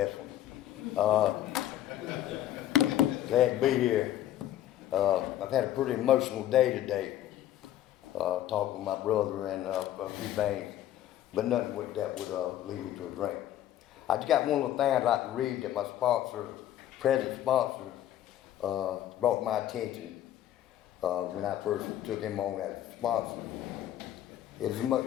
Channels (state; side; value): quieter; right; 12.4 dB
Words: one. Glad to be here. I've had a pretty emotional day today, talking with my brother and a few things, but nothing that would lead me to a drink. I just got one little thing I'd like to read that my sponsor, present sponsor, brought to my attention when I first took him on as a sponsor.